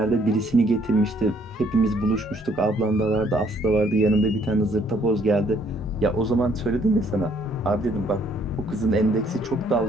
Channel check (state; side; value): normal; both; correlation 0.65